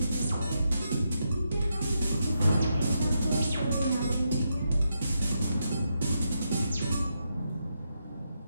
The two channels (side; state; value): both; inverted; correlation -0.83